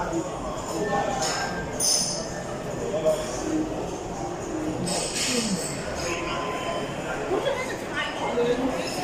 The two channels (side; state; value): both; identical; correlation 1.00